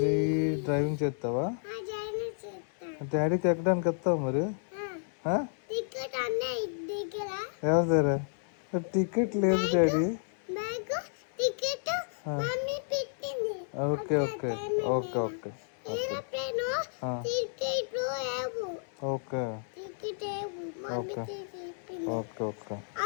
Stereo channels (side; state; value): right; silent; digital silence